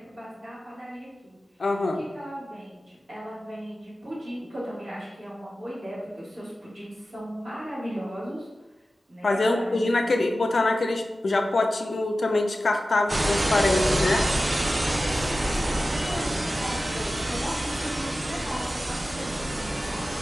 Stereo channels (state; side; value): normal; both; correlation 0.95